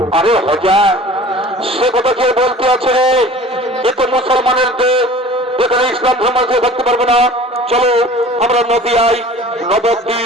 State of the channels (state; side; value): normal; both; correlation 0.44